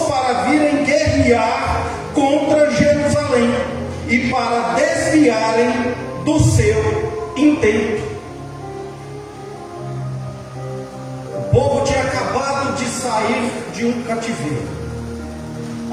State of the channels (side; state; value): both; identical; correlation 1.00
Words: para virem guerrear contra Jerusalém e para desviarem do seu intento. O povo tinha acabado de sair de um cativeiro,